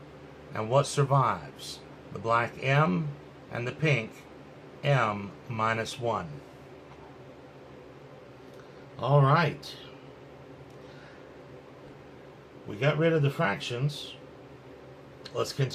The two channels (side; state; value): both; identical; correlation 1.00